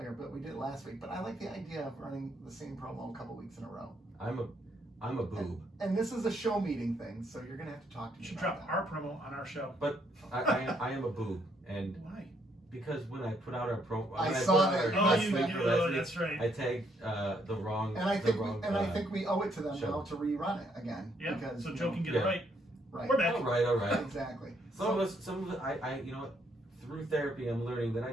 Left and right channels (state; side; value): normal; both; correlation 0.71